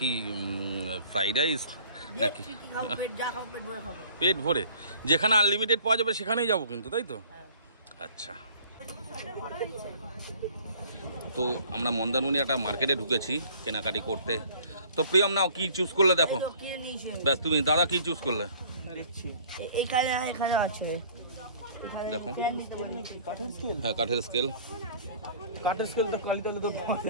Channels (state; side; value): inverted; both; correlation -0.51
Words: ফ্রাইড রাইস নাকি? পেট ভরে, যেখানে আনলিমিটেড পাওয়া যাবে সেখানেই যাবো কিন্তু, তাই তো? আচ্ছা, তো আমরা মন্দারমণি একটা মার্কেটে ঢুকেছি কেনাকাটি করতে। তো প্রিয়ম নাও, কি চুজ করলে দেখো? ব্যাস, তুমি দাদা কি চুজ করলে? দেখো, হ্যাঁ কাঠের স্কেল। কাঠের স্কেল তো কালিতালে তো